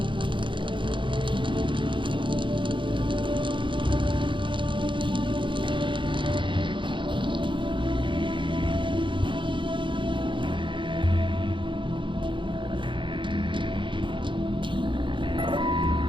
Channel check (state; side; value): late; left; 0.24 ms